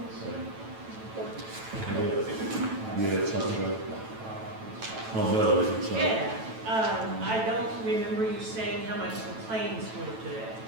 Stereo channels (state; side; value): late; left; 9.1 ms